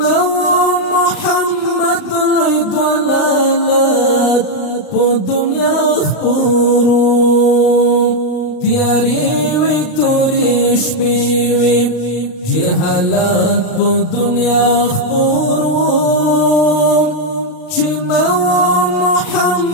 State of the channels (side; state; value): right; late; 39 ms